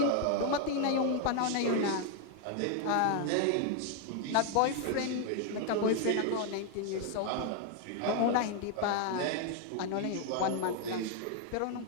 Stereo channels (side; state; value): both; different; correlation 0.01